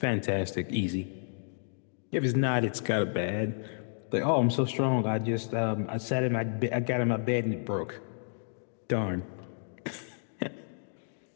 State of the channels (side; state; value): right; silent; digital silence